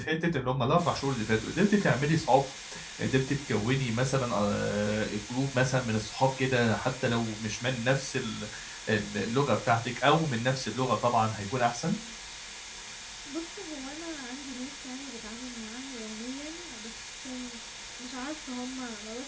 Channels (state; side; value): identical; both; correlation 1.00